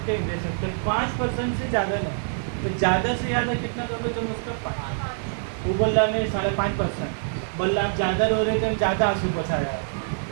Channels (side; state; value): left; silent; digital silence